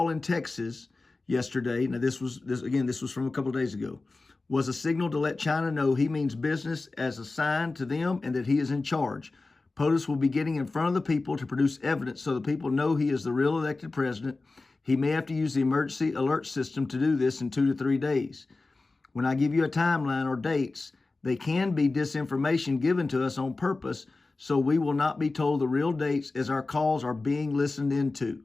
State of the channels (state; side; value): quieter; right; 3.5 dB